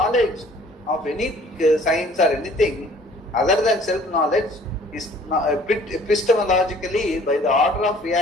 of any science or anything other than self-knowledge is epistemologically, by the order of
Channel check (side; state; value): both; normal; correlation 0.54